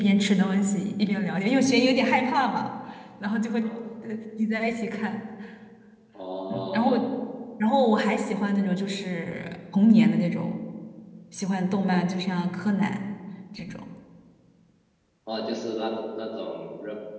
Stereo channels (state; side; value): identical; both; correlation 1.00